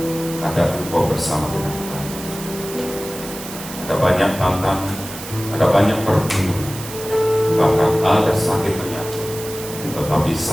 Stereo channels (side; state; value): right; noise; hiss, 12 dB below the sound